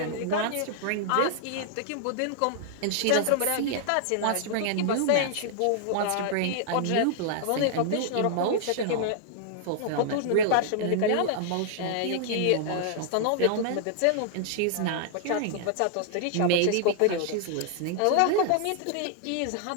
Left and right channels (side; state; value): both; different; correlation -0.01